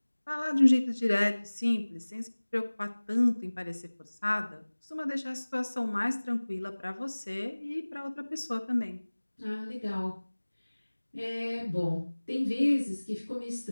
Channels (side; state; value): both; inverted; correlation -1.00